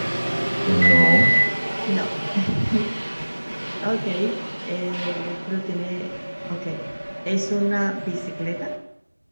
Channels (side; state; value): both; inverted; correlation -1.00